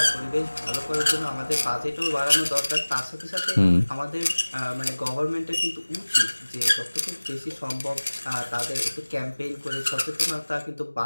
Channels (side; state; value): both; inverted; correlation -1.00